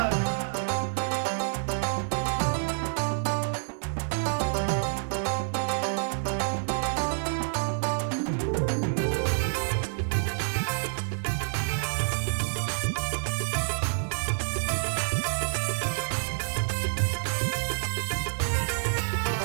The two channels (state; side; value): silent; left; digital silence